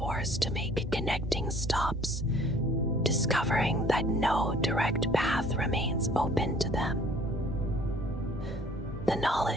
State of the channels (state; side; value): normal; both; correlation 0.54